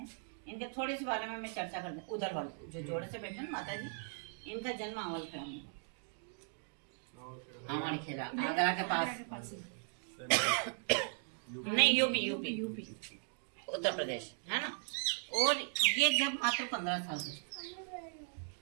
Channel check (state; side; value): silent; left; 52 dB below the other